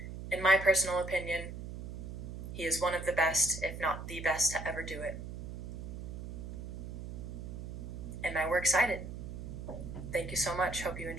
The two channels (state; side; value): noise; right; hum, 8 dB below the sound